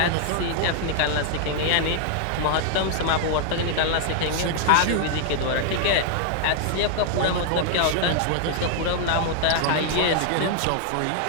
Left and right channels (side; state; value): both; different; correlation 0.00